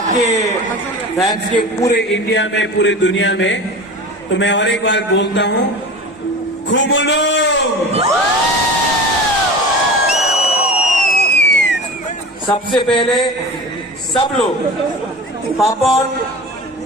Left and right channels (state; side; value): normal; both; correlation 0.34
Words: fans के पूरे India में पूरे दुनिया में तो मैं और एक बार बोलता हूं खुमुलो सबसे पहले सब लोग पापन